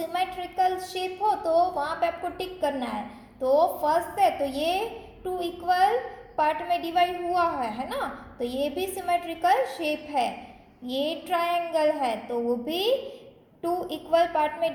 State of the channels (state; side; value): identical; both; correlation 1.00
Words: शेप हो तो वहाँ पे आपको टिक करना है। तो फर्स्ट है तो ये 2 इक्वल पार्ट में डिवाइड हुआ है ना, तो ये भी सिमेट्रिकल शेप है। ये ट्रायंगल है तो वो भी 2 इक्वल पार्ट में